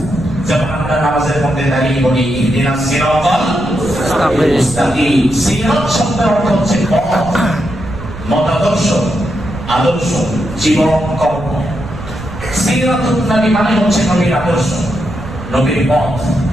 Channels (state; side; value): noise; right; rumble, 12 dB below the sound